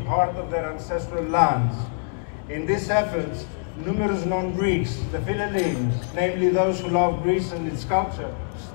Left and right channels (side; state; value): right; silent; 61 dB below the other